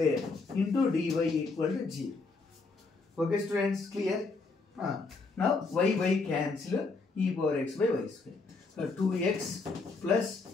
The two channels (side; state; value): right; quieter; 3.9 dB